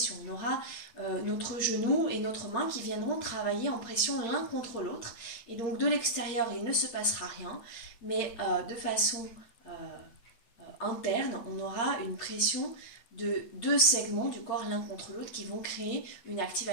On aura notre genou et notre main qui viendront travailler en pression l'un contre l'autre et donc de l'extérieur, il ne se passera rien, mais de façon interne, on aura une pression de deux segments du corps l'un contre l'autre qui vont créer une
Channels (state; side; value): late; right; 8.8 ms